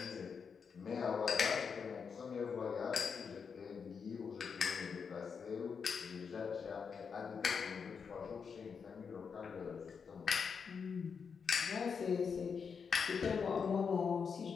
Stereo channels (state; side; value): quieter; right; 6.1 dB